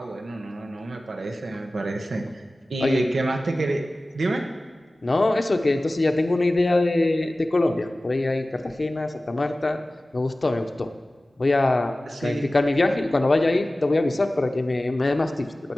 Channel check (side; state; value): both; normal; correlation 0.97